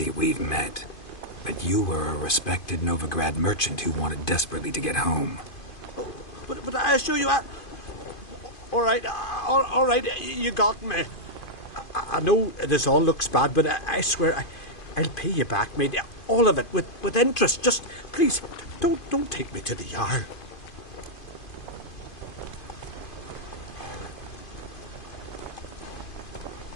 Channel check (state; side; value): late; right; 2.5 ms